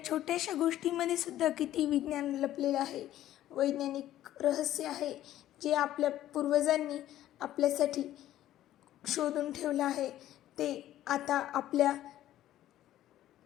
छोट्याशा गोष्टीमध्ये सुद्धा किती विज्ञान लपलेलं आहे, वैज्ञानिक रहस्य आहे जे आपल्या पूर्वजांनी आपल्यासाठी शोधून ठेवलं आहे. ते आता आपल्या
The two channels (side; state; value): right; quieter; 13.2 dB